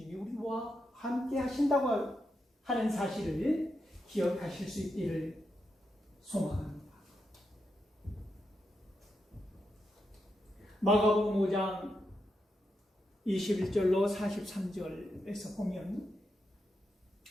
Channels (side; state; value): both; normal; correlation 0.85